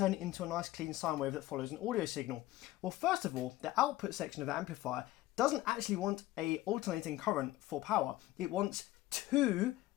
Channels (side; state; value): right; quieter; 16.3 dB